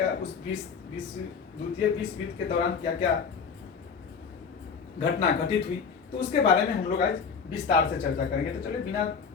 उस द्वितीय विश्व युद्ध के दौरान क्या क्या घटना घटित हुई, तो उसके बारे में हम लोग आज विस्तार से चर्चा करेंगे। तो चलिए बिना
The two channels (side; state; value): right; quieter; 6.0 dB